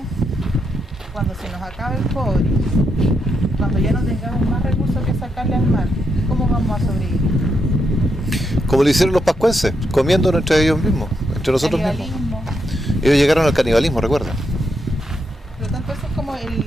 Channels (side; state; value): both; normal; correlation 0.81